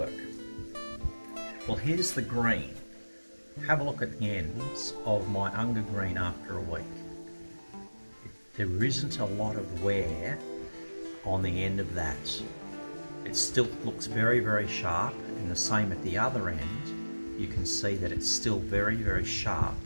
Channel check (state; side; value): inverted; both; correlation -1.00